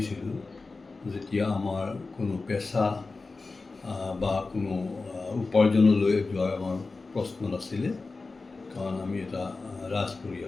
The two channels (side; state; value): right; quieter; 3.8 dB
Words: যেতিয়া আমাৰ কোনো পেচা বা কোনো উপাৰ্জনলৈ যোৱাৰ আমাৰ প্ৰশ্ন নাছিলে, কাৰণ আমি এটা ৰাজ